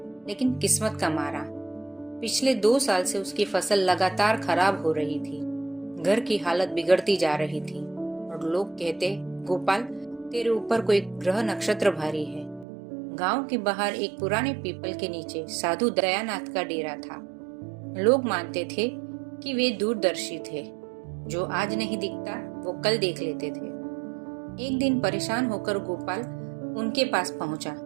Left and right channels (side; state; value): left; drops out; at 12.7 s